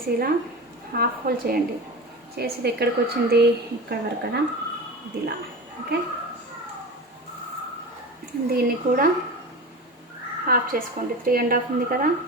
ఇలా హాఫ్ హోల్ చేయండి. చేసి ఇది ఎక్కడికి వచ్చింది, ఇక్కడ వరకు కదా, ఇది ఇలా. ఓకే, దీన్ని కూడా హాఫ్ చేసుకోండి. 3.5 ఉంది కదా,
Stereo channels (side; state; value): both; normal; correlation 0.29